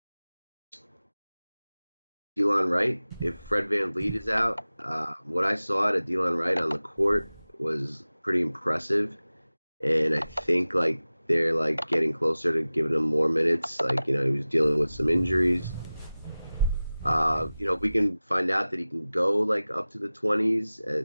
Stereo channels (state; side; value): inverted; both; correlation -0.97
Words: Wright. If Fred VanVleet is out, what I saw at Delon Wright on the court was pretty impressive, and I think like they're like getting closer to giving him more minutes. Like he was dealing with some injuries. We can find out that he can go like up to the 20s